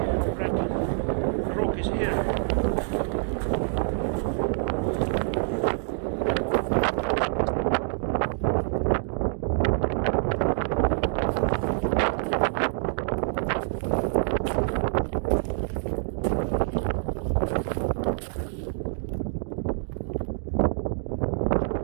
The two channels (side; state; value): left; silent; digital silence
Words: red rock is here.